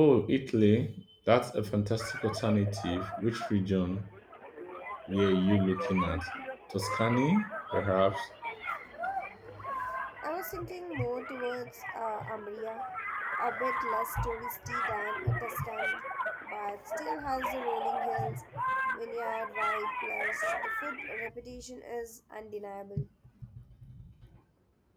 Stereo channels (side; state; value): both; identical; correlation 1.00